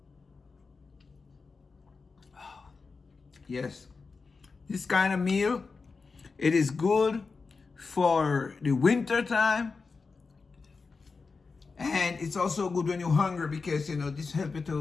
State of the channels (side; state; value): right; quieter; 4.5 dB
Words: Yes, this kind of meal, it is good for the winter time, and it's also good when you're hungry because you know this helps